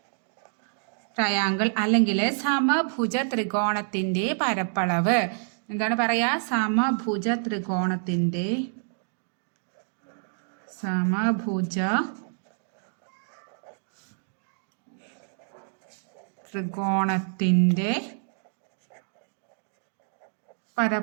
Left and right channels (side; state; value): left; silent; digital silence